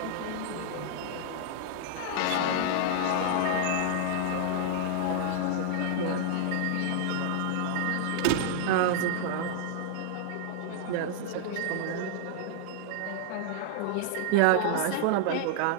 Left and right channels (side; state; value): both; different; correlation -0.01